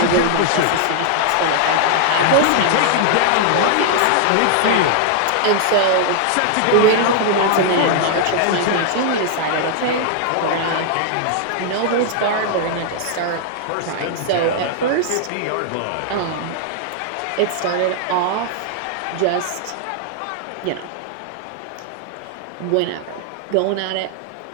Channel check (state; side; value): different; both; correlation -0.01